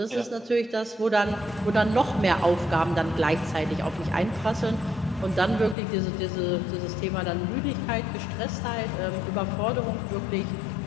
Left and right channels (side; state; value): right; drops out; at 5.8 s